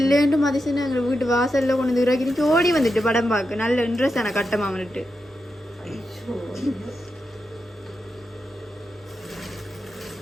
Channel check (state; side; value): normal; both; correlation 0.87